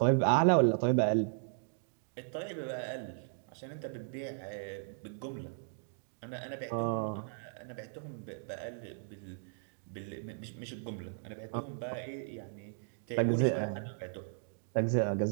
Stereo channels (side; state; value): left; silent; digital silence